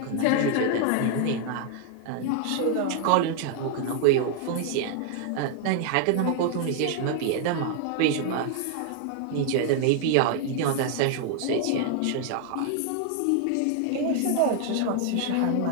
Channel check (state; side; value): different; both; correlation 0.00